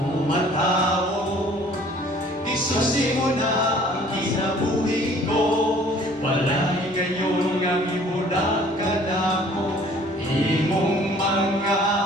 matao isusi mo na ang kinabuhi ko wala'y gayon nga ibudak ka na ko imong mga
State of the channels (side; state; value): both; normal; correlation 0.54